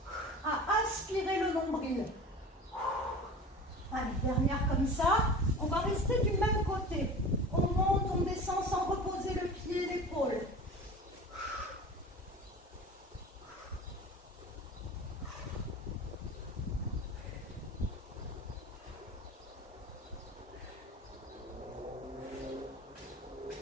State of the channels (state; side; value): normal; both; correlation 0.36